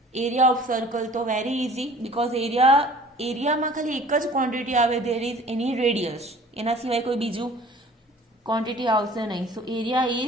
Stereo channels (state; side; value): normal; both; correlation 0.49